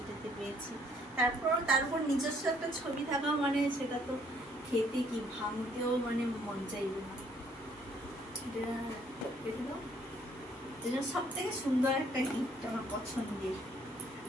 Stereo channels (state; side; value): normal; both; correlation 0.64